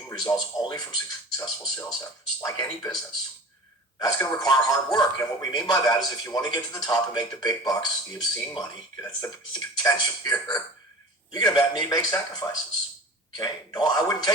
results only from successful sales efforts, like any business. That's going to require hard work. And what we mean by that is if you want to get to the top and make the big bucks, the obscene money, that's the potential here, you're going to need to make sacrifices. Okay? No, I wouldn't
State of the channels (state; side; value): normal; both; correlation 0.38